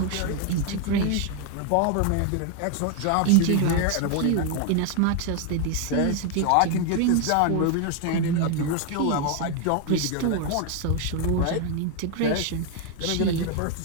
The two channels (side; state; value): both; different; correlation 0.00